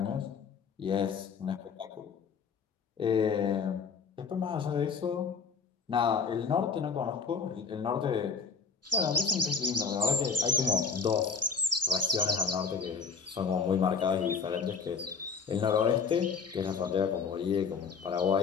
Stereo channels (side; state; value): right; quieter; 5.5 dB